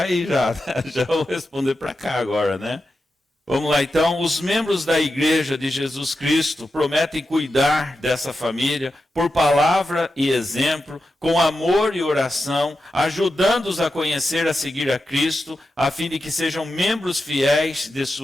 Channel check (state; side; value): normal; both; correlation 0.90